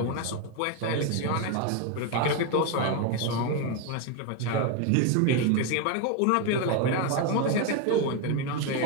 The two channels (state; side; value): different; both; correlation 0.02